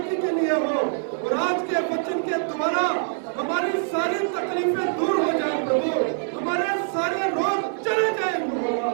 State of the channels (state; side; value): silent; left; 62 dB below the other